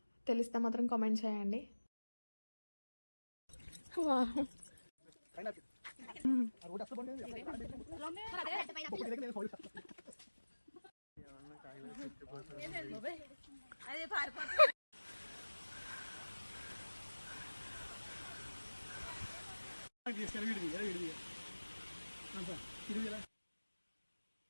తెలిస్తే మాత్రం కామెంట్ చేయండి.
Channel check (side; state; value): both; inverted; correlation -1.00